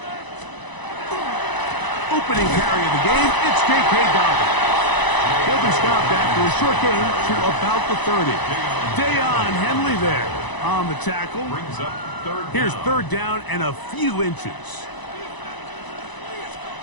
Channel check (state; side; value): late; right; 1.0 ms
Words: Opening carry of the game, it's J.K. Dobbins. He'll be stopped after a short gain to about the 30. Dayon Henley there on the tackle. Here's 3rd down and a few inches.